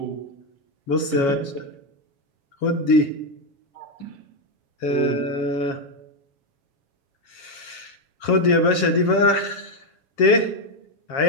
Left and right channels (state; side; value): late; right; 7.3 ms